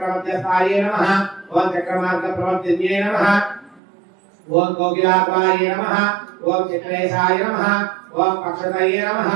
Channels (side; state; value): left; drops out; at 3.8 s